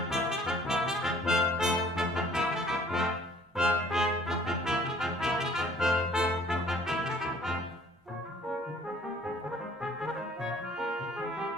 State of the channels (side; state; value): both; normal; correlation 0.56